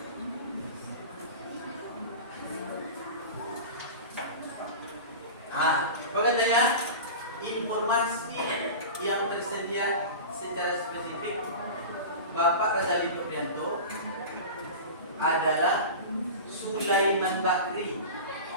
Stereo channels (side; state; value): both; inverted; correlation -0.31